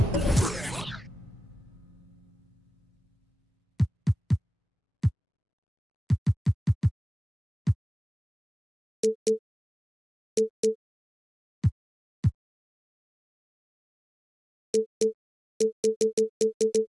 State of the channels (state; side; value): normal; both; correlation 0.96